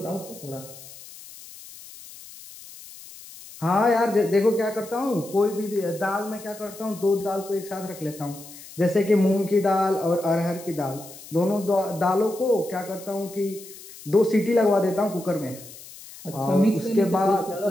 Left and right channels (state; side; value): noise; left; hiss, 17 dB below the sound